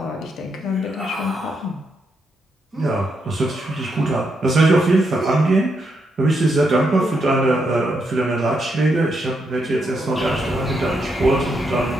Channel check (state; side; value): normal; both; correlation 0.80